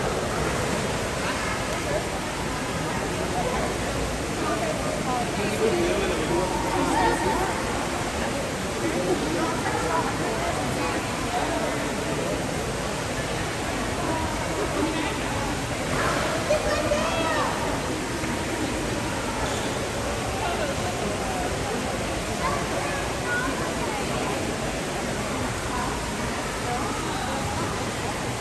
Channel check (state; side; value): noise; left; hum, 14 dB below the sound